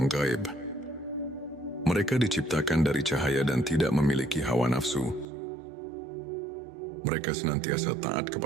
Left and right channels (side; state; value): left; drops out; at 5.2 s